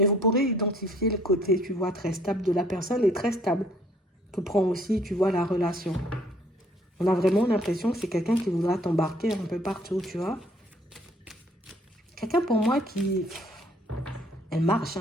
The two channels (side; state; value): both; normal; correlation 0.60